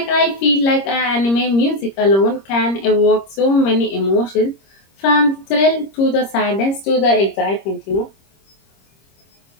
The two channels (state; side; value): late; right; 26 ms